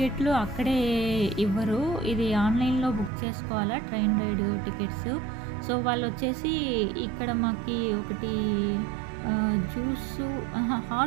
అక్కడే ఇవ్వరు. ఇది ఆన్‌లైన్‌లో బుక్ చేసుకోవాలా ట్రైన్ రైడ్ టికెట్స్. సో, వాళ్ళొచ్చేసి ఇక్కడ మాకి ఒకటి జ్యూసు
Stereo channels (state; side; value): drops out; left; at 3.1 s